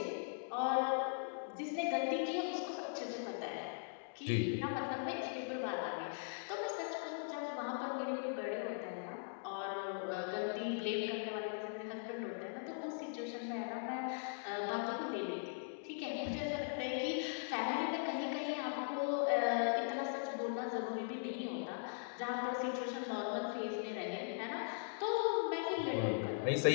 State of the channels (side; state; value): right; silent; digital silence